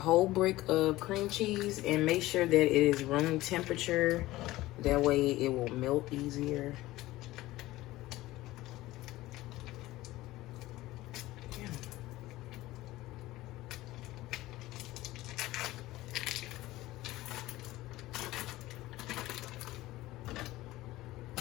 brick of cream cheese and make sure that it is room temperature. That way it will melt easier.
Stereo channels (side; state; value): right; quieter; 17.4 dB